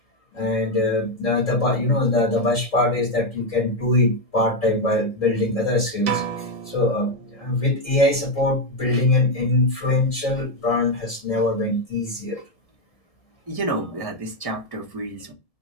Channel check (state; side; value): late; right; 1.7 ms